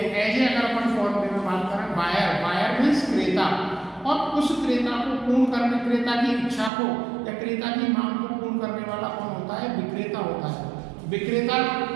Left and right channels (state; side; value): drops out; left; at 6.7 s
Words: ऐसे अगर अपन फॉर्म में बात करें, बायर, बायर मीन्स क्रेता, और उस क्रेता को पूर्ण करने, क्रेता की इच्छा को या क्रेता की मांग को पूर्ण करने वाला कौन होता है? विक्रेता होता है। विक्रेता,